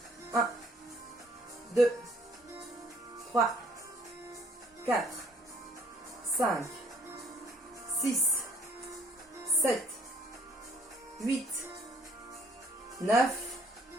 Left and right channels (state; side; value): normal; both; correlation 0.61